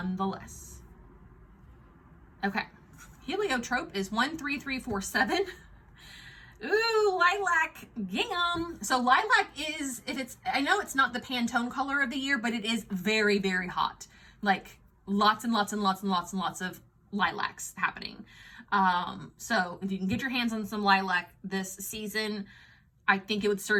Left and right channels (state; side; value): identical; both; correlation 1.00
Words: Okay, heliotrope is 13347. Ooh, lilac gingham. So lilac is, if it's, I know it's not the Pantone color of the year, but it is very, very hot. Like lots and lots and lots and lots and lots of lilacs happening. So if you can get your hands on some lilac this season, I think it would